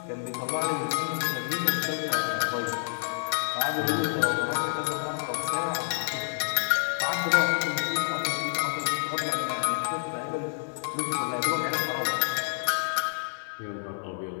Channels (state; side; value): silent; right; digital silence